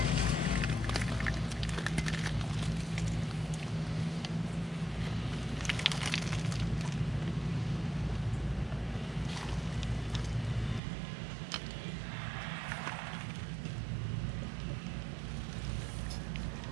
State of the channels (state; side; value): drops out; left; at 10.8 s